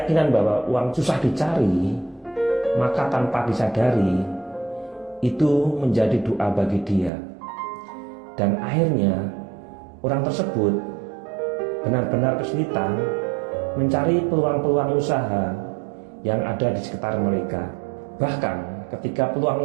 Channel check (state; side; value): drops out; left; at 7.1 s